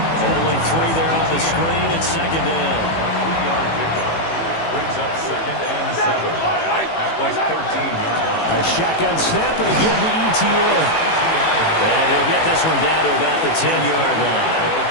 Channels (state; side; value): late; right; 18 ms